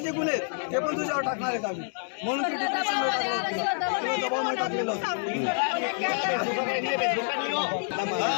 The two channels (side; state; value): right; silent; 60 dB below the other